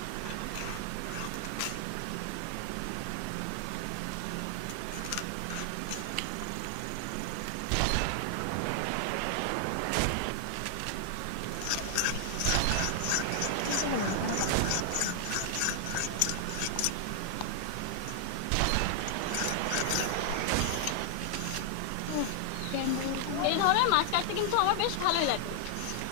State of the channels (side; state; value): both; different; correlation 0.00